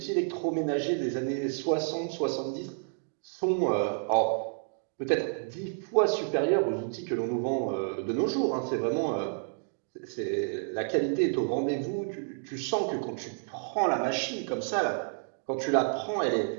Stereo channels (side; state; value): left; silent; digital silence